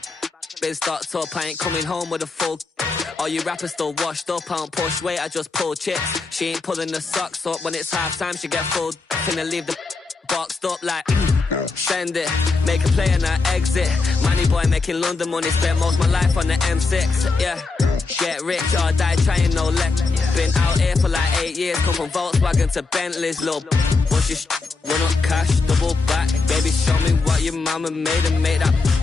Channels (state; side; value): quieter; right; 4.0 dB